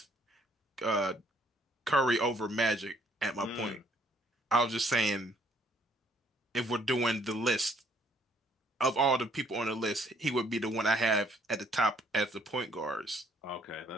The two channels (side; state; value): both; normal; correlation 0.65